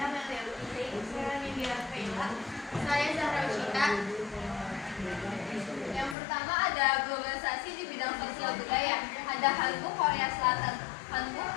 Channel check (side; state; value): right; drops out; at 6.2 s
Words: Melia Lutfi. Saya Nindira Kaila. Saya Zahra Ushita. Yang pertama ada globalisasi di bidang sosial budaya. Ada Hanbok Korea Selatan. Hanbok